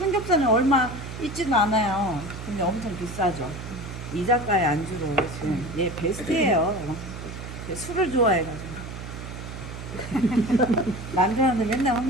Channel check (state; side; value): noise; right; hum, 10 dB below the sound